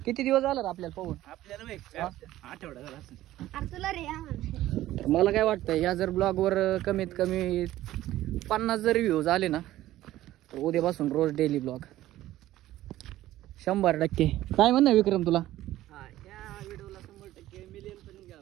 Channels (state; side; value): quieter; left; 14.8 dB